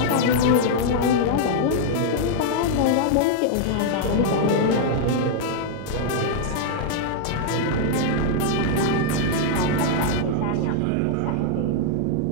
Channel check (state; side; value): different; both; correlation -0.01